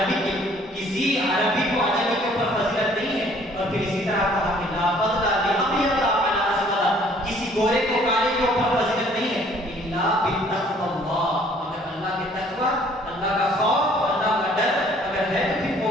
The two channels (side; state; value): both; normal; correlation 0.58